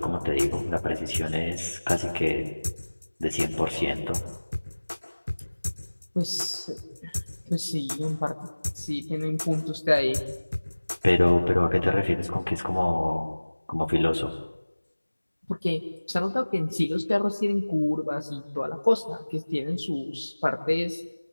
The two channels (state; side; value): inverted; both; correlation -1.00